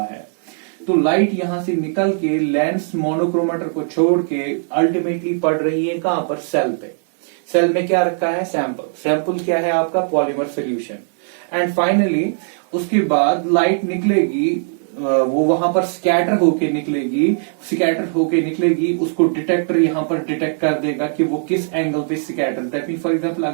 है. तो लाइट यहां से निकल के लेंस मोनोक्रोमेटर को छोड़ के अल्टीमेटली पड़ रही है कहां पर, सेल पे. सेल में क्या रखा है, सैंपल क्या है आपका, पॉलीमर सोल्यूशन. एंड फाइनली उसके बाद लाइट निकलेगी, वो वहां पर स्कैटर होके निकलेगी. उसको डिटेक्टर यहां पर डिटेक्ट कर देगा कि वो किस एंगल पे scatter. That mean for example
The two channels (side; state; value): left; silent; 67 dB below the other